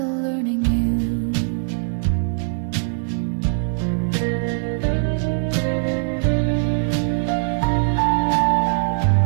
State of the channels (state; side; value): silent; left; digital silence